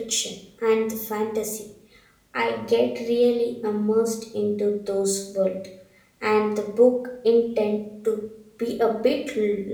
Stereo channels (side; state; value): both; identical; correlation 1.00